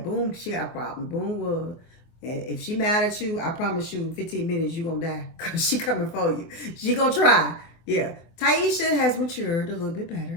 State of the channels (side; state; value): right; late; 24 ms